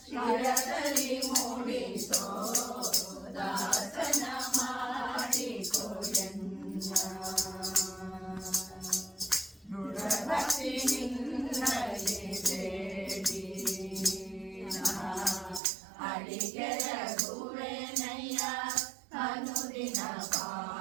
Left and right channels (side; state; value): left; drops out; at 15.6 s